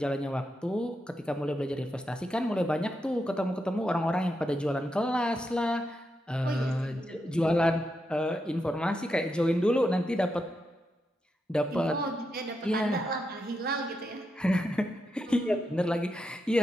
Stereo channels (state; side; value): normal; both; correlation 0.85